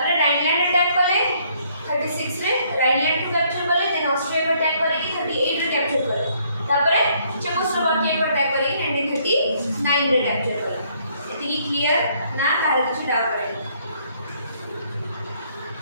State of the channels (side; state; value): both; inverted; correlation -0.67